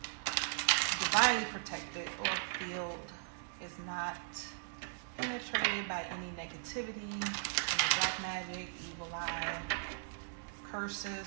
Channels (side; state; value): left; silent; digital silence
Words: divinely protected or field is not penetrated by any negativity, any black magic, evil eye,